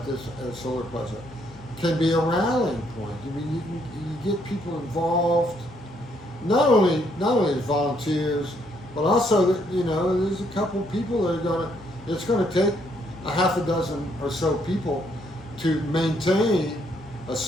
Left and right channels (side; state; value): both; normal; correlation 0.71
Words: solar project can be a rallying point. I mean, you get people involved. Not only as volunteers, but also that there's a couple people that it's gonna take a half a dozen or so people to maintain a